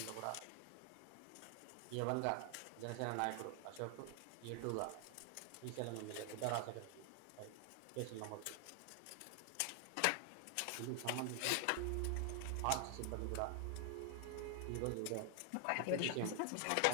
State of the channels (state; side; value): different; both; correlation 0.00